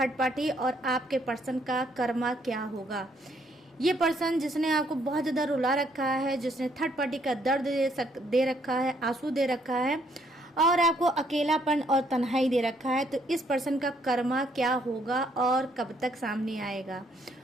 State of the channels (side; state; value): both; normal; correlation 0.69